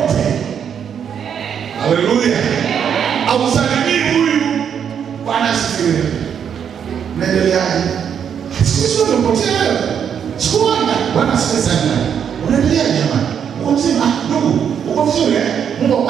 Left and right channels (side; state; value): left; quieter; 8.0 dB